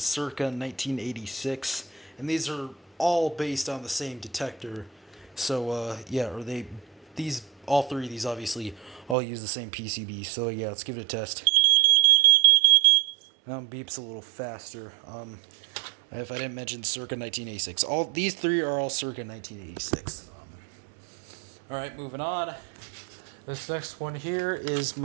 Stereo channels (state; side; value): drops out; left; at 9.2 s